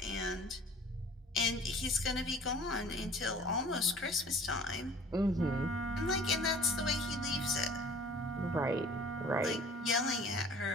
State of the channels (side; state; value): both; normal; correlation 0.48